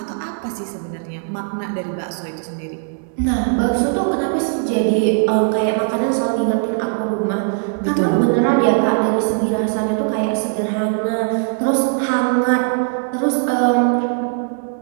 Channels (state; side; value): silent; left; 65 dB below the other